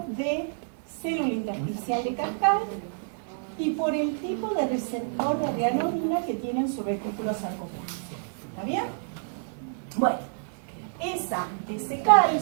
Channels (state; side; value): silent; left; digital silence